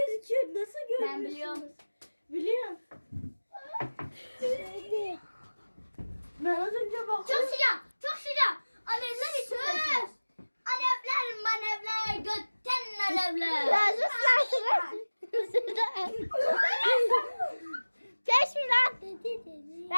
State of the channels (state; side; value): inverted; both; correlation -1.00